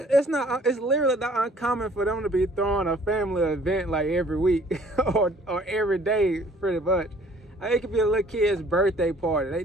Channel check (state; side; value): normal; both; correlation 0.56